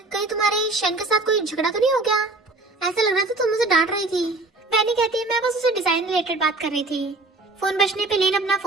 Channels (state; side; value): quieter; left; 3.1 dB